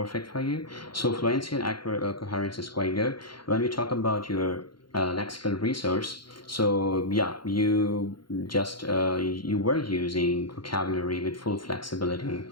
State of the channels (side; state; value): right; late; 0.73 ms